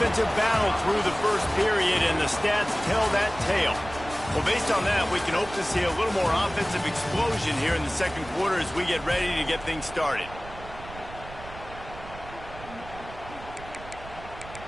battle through the first period, and the stats tell that tale. Well, based on that, we can hope to see a little more offensive explosion here in the second quarter as we get ready to get things started.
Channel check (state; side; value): noise; right; rumble, 15 dB below the sound